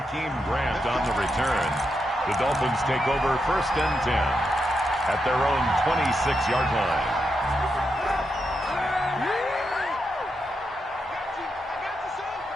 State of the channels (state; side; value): normal; both; correlation 0.84